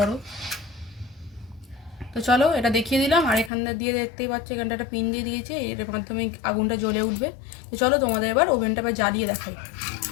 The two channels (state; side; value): drops out; right; at 3.5 s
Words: তো চলো, এটা দেখিয়ে দিলাম। আর এখানটা দিয়ে দেখতেই পাচ্ছ, এখানটা একটা পিন দিয়ে দিয়েছে, এর মাধ্যমে আগুনটা জ্বলে উঠবে। তো চলো তোমাদের এবার ওভেনটা আবার জ্বালিয়ে দেখাই।